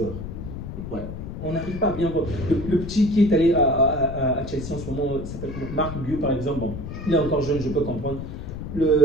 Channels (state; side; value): noise; left; rumble, 8 dB below the sound